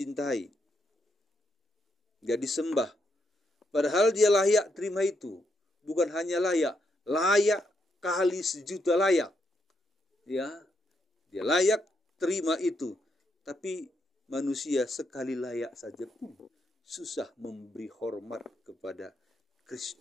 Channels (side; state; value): both; normal; correlation 0.79